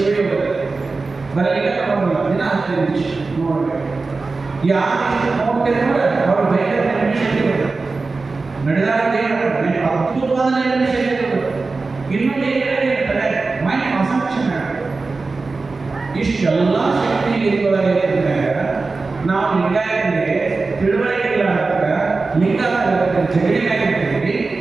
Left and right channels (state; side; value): quieter; left; 3.9 dB